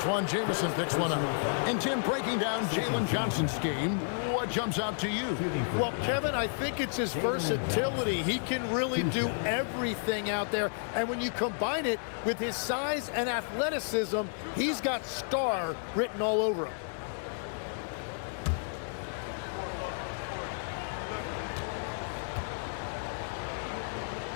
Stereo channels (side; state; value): right; silent; digital silence